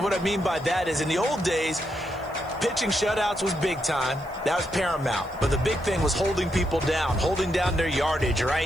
what I mean by that is in the old days, pitching shutouts was big time. That was paramount. But the big thing was holding people down, holding down their yardage,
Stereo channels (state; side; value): noise; left; hiss, 27 dB below the sound